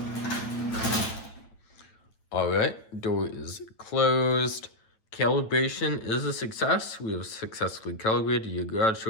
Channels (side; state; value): right; late; 9.0 ms